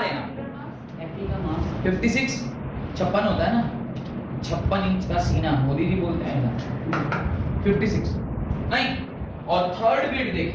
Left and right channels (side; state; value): both; identical; correlation 1.00